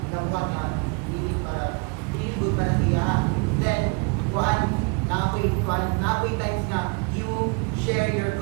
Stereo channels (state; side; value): quieter; left; 30.6 dB